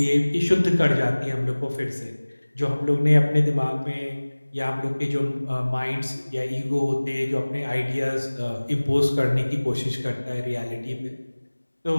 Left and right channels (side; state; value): both; inverted; correlation -1.00